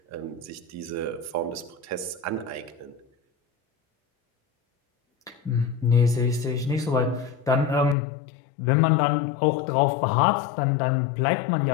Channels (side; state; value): right; drops out; at 8.0 s